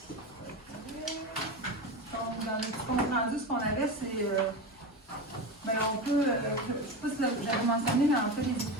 Donc, dans le petit compte rendu, ce qu'on avait, c'est. Ben, on peut. Je ne sais pas si j'avais mentionné, mais en fait, les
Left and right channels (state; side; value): normal; both; correlation 0.22